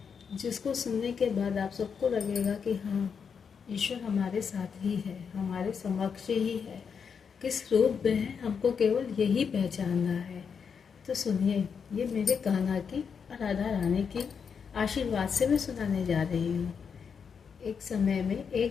जिसको सुनने के बाद आप सबको लगेगा कि हाँ, ईश्वर हमारे साथ ही है, हमारे समक्ष ही है। किस रूप में है हमको केवल यही पहचानना है। तो सुनिए, ये मेरे कान्हा की और राधा रानी की आशीर्वाद से मैं सुनाने जा रही हूँ। एक समय में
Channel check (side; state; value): right; quieter; 6.5 dB